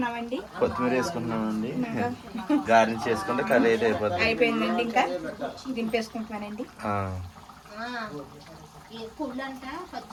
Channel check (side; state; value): both; identical; correlation 1.00